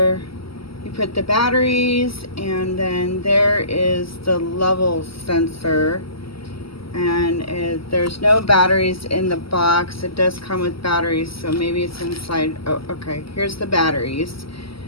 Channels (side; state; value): right; late; 0.75 ms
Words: you put the batteries, and then there is the level sensor. And there's no batteries in the box. It does come with batteries, so maybe it's inside. Oh, okay, here's the batteries.